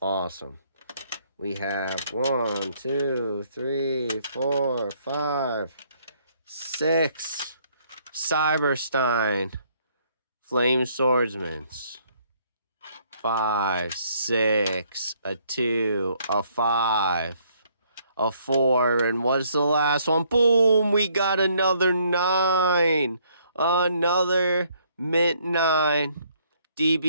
Awesome. We have 1, 2, 3, 4, 5, 6. Cyberstein. Flame Swordsman's. 5, 6, a 2, a 5, a 4, and what's the last one? Boom! We got another 9. Another mint 9.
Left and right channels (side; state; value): both; inverted; correlation -0.67